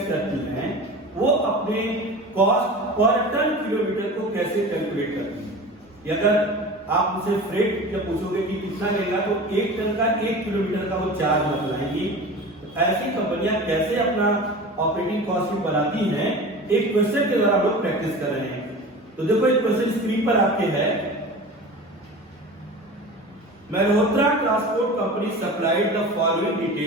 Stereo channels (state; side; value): normal; both; correlation 0.34